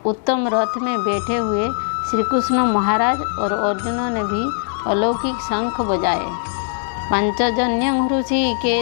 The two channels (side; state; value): right; silent; 66 dB below the other